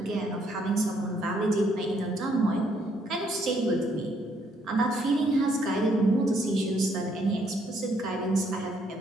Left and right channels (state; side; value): normal; both; correlation 0.70